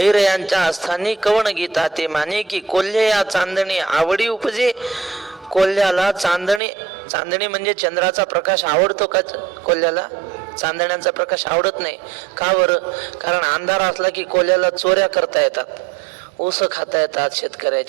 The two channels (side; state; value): left; drops out; at 6.6 s